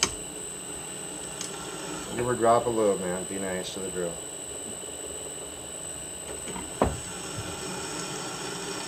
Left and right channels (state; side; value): identical; both; correlation 1.00